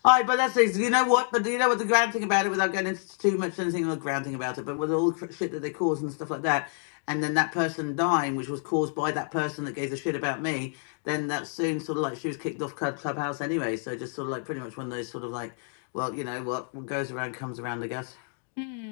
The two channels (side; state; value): right; silent; 55 dB below the other